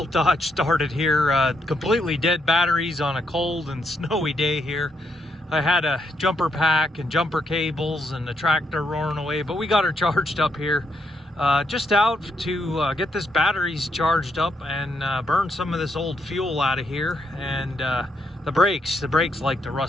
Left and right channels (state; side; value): normal; both; correlation 0.78